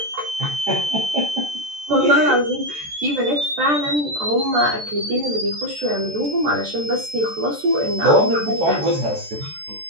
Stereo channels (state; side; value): late; left; 14 ms